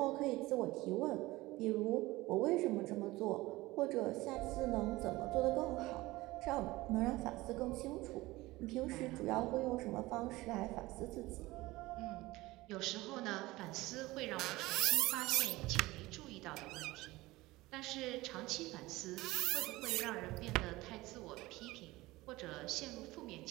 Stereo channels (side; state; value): left; quieter; 19.5 dB